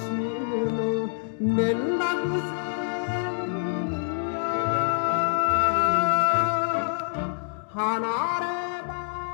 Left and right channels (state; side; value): silent; right; digital silence